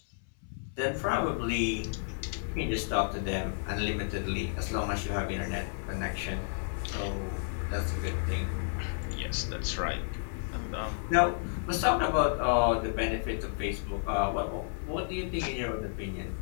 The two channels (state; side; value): silent; right; 57 dB below the other